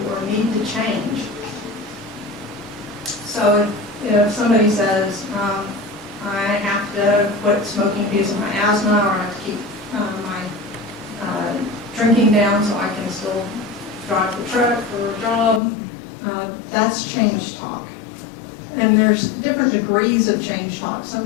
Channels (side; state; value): right; drops out; at 15.6 s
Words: or need to change. So if somebody says, I have to quit smoking because of my asthma, or I have to keep my drinking down so I can still drive the truck for a job, that's change talk. And there's different degrees of change talk. Some